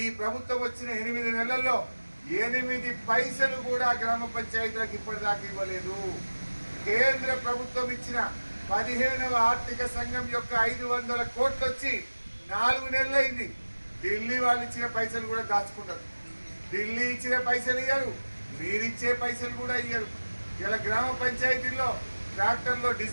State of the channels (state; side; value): inverted; both; correlation -1.00